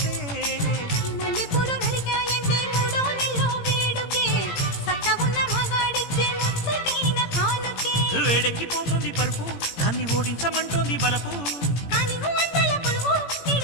మల్లెపూలు నలిగాయంటే మూడో నెలలో వేడుకే సత్తా ఉన్న మగాడిచ్చే ముచ్చటైన కానుకే వేడెక్కిపోతుంది పరుపు దాన్ని ఓడించమంటోంది బలపు కానీ అంతల పొలువు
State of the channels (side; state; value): right; late; 17 ms